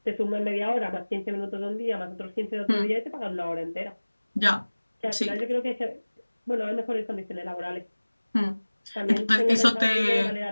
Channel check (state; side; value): inverted; both; correlation -1.00